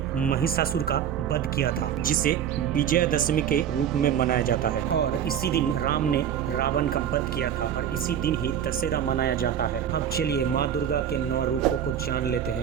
महिषासुर का वध किया था, जिसे विजयदशमी के रूप में मनाया जाता है। और इसी दिन राम ने रावण का वध किया था और इसी दिन ही दशहरा मनाया जाता है। अब चलिए माँ दुर्गा के 9 रूपों को जान लेते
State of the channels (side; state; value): left; quieter; 9.2 dB